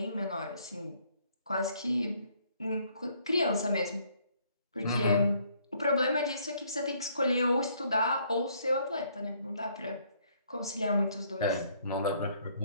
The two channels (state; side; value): inverted; both; correlation -0.66